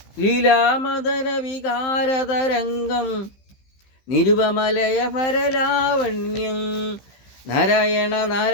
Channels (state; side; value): late; right; 15 ms